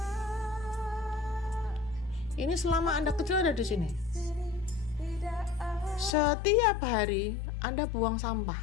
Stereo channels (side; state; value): right; drops out; at 6.2 s